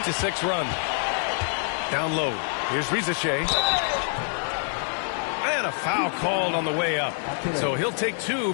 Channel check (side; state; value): right; silent; 61 dB below the other